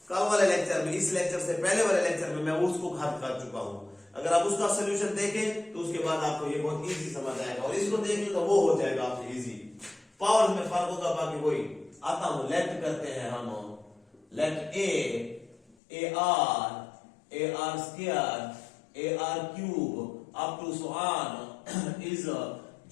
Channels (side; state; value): right; drops out; at 15.8 s